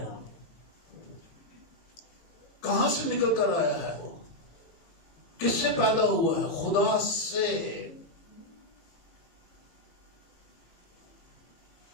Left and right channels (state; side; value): late; right; 18 ms